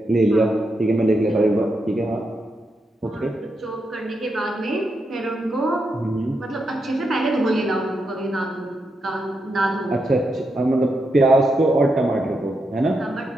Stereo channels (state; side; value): normal; both; correlation 0.84